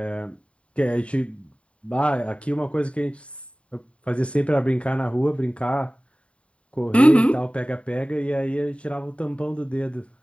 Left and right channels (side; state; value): right; late; 0.061 ms